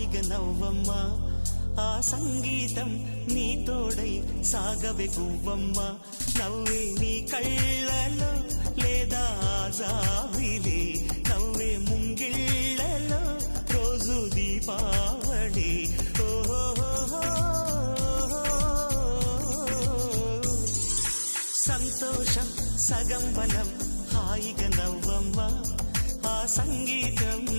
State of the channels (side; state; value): both; inverted; correlation -1.00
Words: నవ్వమ్మా ఆ సంగీతం నీ తోడై సాగవే గువ్వమ్మ నవ్వే నీ కళ్ళలో లేదా జాబిలి నవ్వే ముంగిళ్ళలో రోజు దీపావళి సంతోషం సగం బలం హాయిగా నవ్వమ్మ ఆ సంగీతం